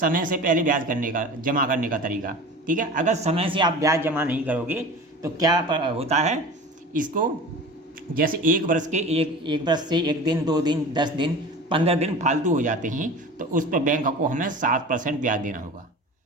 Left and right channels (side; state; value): both; normal; correlation 0.36